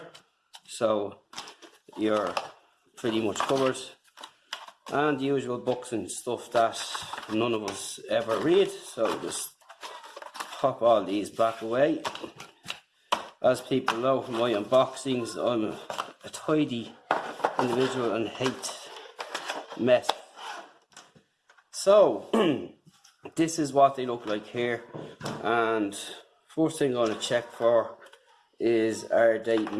so you're pretty much covered. And the usual books and stuff that none of us ever read, so just pop all these back away. As people know from my unboxings, I'm a tidy individual and hate mess. So this is what they look like here, and first thing I'm going to check for is, are they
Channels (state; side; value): identical; both; correlation 1.00